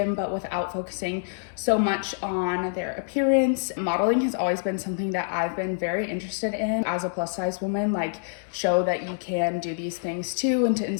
but without focusing so much on their appearance. Modeling has always been something that I've been very interested in as a plus size woman, show that you can do these things too, and to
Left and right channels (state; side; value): silent; right; digital silence